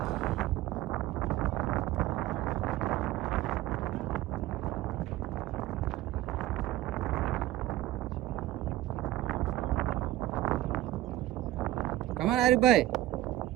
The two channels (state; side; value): quieter; left; 15.2 dB